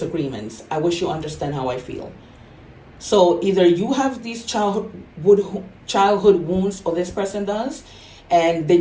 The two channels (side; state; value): both; identical; correlation 1.00